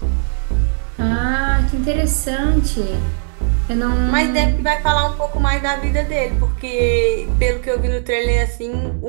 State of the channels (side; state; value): left; silent; 60 dB below the other